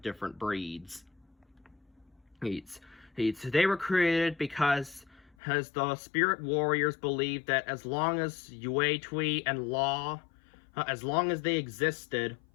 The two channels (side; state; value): right; drops out; at 5.4 s